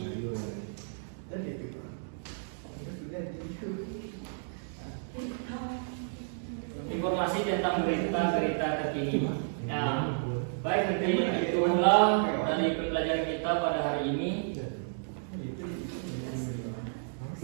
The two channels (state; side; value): silent; left; digital silence